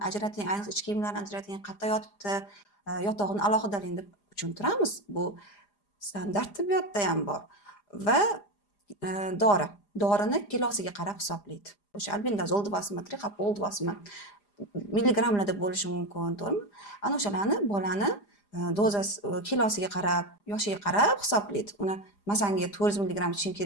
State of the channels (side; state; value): right; late; 4.9 ms